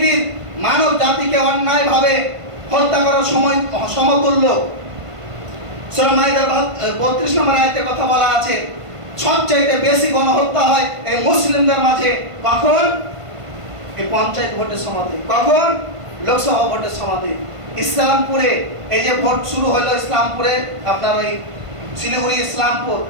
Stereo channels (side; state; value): left; late; 1.5 ms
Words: মানব জাতিকে অন্যায়ভাবে হত্যা করার সমতুল্য। সূরা মাইদার 32 নম্বর আয়াতে কথা বলা আছে সবচেয়ে বেশি গণহত্যা হয় এই মুসলিমদের মাঝে। কখন? এই পঞ্চায়েত ভোটের সময়তে। কখন? লোকসভা ভোটের সময়তে। ইসলামপুরে এই যে ভোট শুরু হলো, ইসলামপুরে আপনার ওই শিলিগুড়ি ইসলামপুর,